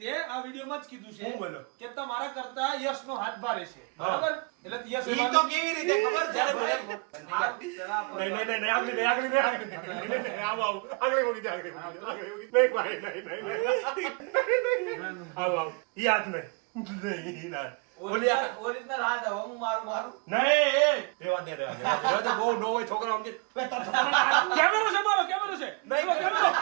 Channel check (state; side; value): quieter; left; 32.7 dB